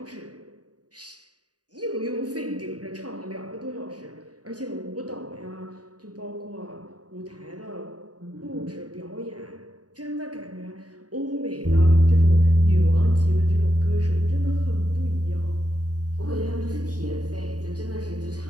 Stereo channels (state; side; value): late; left; 0.68 ms